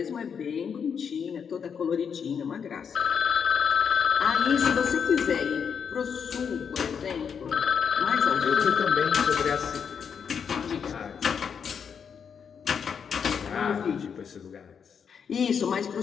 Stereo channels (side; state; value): right; quieter; 6.9 dB